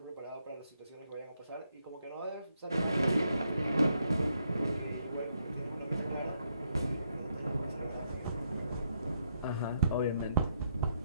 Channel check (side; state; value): both; inverted; correlation -0.77